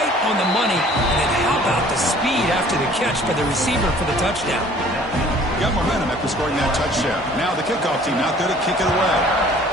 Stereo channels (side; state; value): both; normal; correlation 0.53